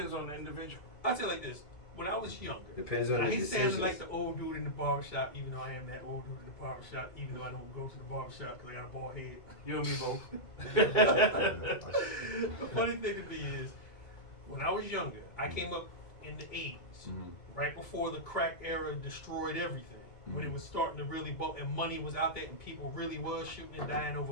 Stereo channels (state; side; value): late; right; 2.5 ms